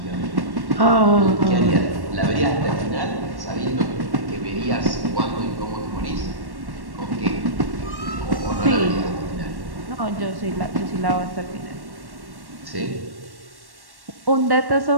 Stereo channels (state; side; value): late; left; 1.1 ms